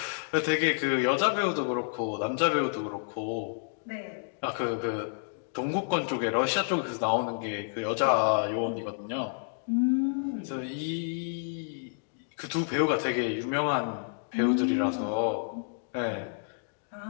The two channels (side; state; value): right; silent; digital silence